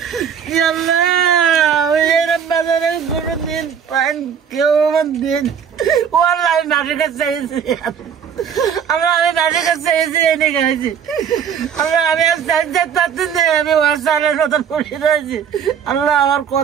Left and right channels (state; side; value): quieter; left; 7.7 dB